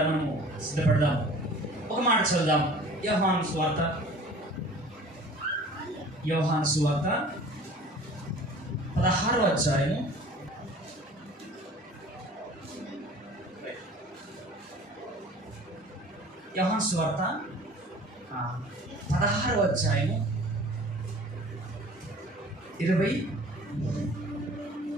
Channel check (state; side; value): normal; both; correlation 0.46